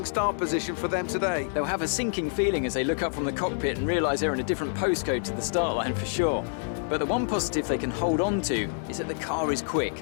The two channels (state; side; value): silent; right; 60 dB below the other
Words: start position for them today. They'll have a sinking feeling as they look up from the cockpit and realise they're in a different postcode to the start line for sure. But the one positive they can hold on to is that the car is